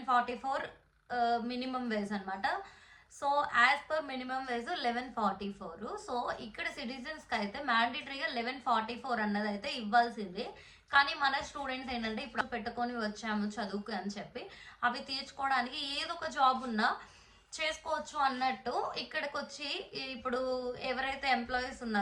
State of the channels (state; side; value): identical; both; correlation 1.00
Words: మినిమం వేజ్ అనమాట. So as per minimum wage 1144. So ఇక్కడ సిటిజన్స్కి అయితే మ్యాండేటరీగా 1144 అన్నది అయితే ఇవ్వాల్సిందే. కానీ మన స్టూడెంట్స్ ఏంటంటే ఇప్పుడు పెట్టుకొని వచ్చాము చదువుకు అని చెప్పి అవి తీర్చుకోవడానికి ఏదో ఒక జాబ్ ఉన్నా చేసుకోవచ్చు అన్నట్టు ఇక్కడికి వచ్చి ఇప్పుడు ఎవరైతే ఎంప్లాయీస్